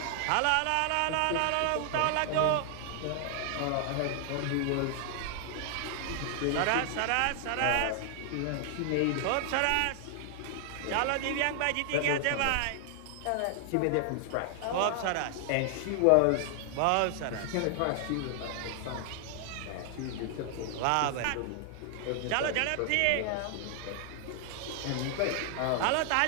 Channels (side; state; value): both; different; correlation 0.00